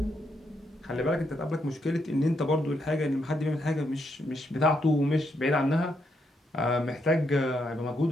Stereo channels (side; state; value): both; normal; correlation 0.78